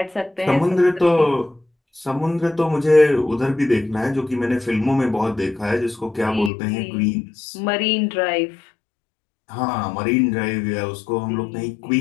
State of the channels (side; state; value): right; drops out; at 6.5 s